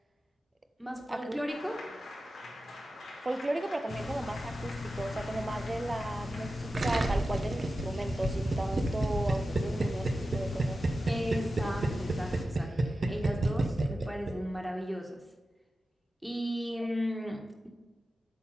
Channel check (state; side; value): normal; both; correlation 0.93